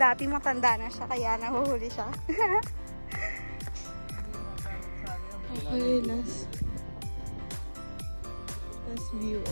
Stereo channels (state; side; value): inverted; both; correlation -1.00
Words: matanda na siya kaya nahuhuli siya. Okay, last view,